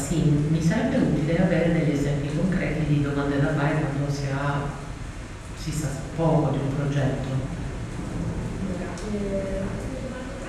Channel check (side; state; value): both; identical; correlation 1.00